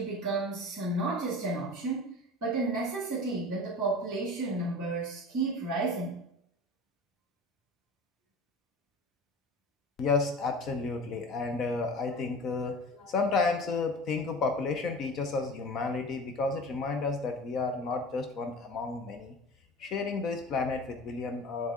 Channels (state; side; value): normal; both; correlation 0.36